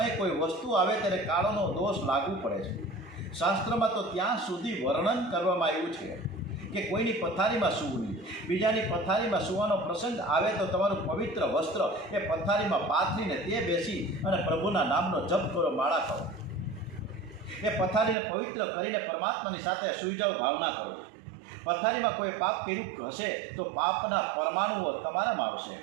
કોઈ વસ્તુ આવે ત્યારે કાળનો દોષ લાગુ પડે છે. શાસ્ત્રમાં તો ત્યાં સુધી વર્ણન કરવામાં આવ્યું છે કે કોઈની પથારીમાં સૂવું નહીં. બીજાની પથારીમાં સૂવાનો પ્રસંગ આવે તો તમારું પવિત્ર વસ્ત્ર એ પથારીમાં પાથરીને તે બેસી અને પ્રભુના નામનો જપ કરો, માળા કરો. એ પથારીને પવિત્ર કરીને પરમાત્માની સાથે સૂઈ જાઓ, ભાવના કરો. પથારીમાં કોઈ પાપ કર્યું હશે તો પાપના પરમાણુઓ તમારામાં આવશે.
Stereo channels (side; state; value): left; drops out; at 18.2 s